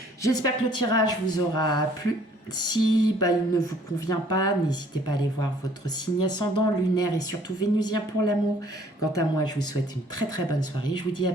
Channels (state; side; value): normal; both; correlation 0.58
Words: J'espère que le tirage vous aura plu. Si il ne vous convient pas, n'hésitez pas à aller voir votre signe ascendant, lunaire et surtout vénusien pour l'amour. Quant à moi, je vous souhaite une très très bonne soirée. Je vous dis à